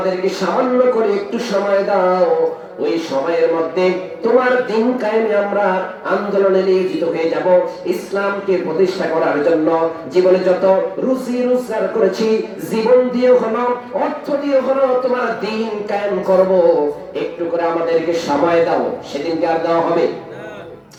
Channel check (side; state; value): both; identical; correlation 1.00